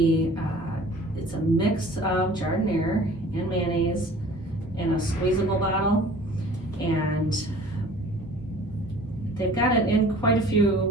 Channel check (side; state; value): both; normal; correlation 0.48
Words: It's a mix of giardiniera and mayonnaise in a squeezable bottle, and they've got it in quite a few